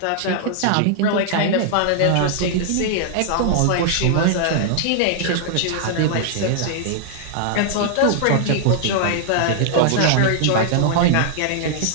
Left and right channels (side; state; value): both; different; correlation -0.01